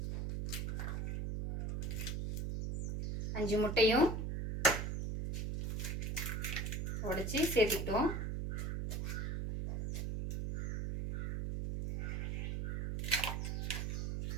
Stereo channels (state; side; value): noise; right; hum, 1 dB below the sound